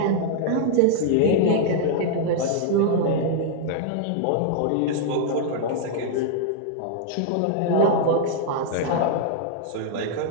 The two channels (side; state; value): both; different; correlation -0.01